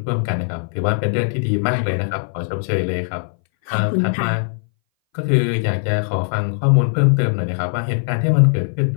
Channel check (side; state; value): right; silent; 61 dB below the other